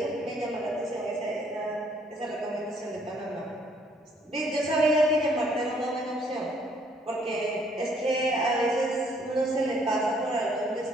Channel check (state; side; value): normal; both; correlation 0.65